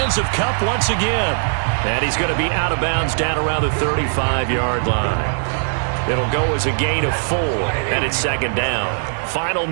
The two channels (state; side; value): silent; left; digital silence